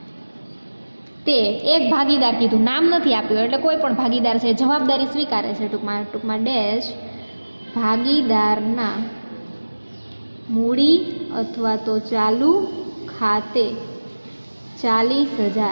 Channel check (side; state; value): both; inverted; correlation -1.00